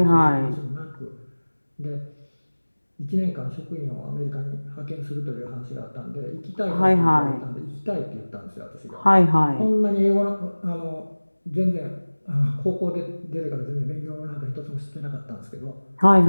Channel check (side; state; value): both; inverted; correlation -1.00